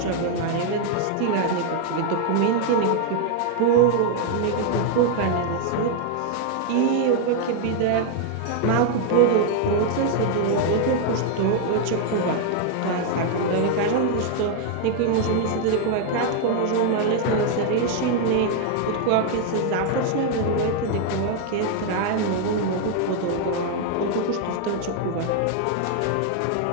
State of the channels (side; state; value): both; different; correlation 0.00